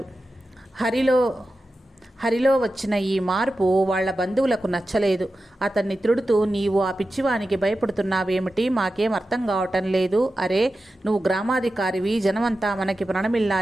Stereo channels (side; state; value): both; normal; correlation 0.92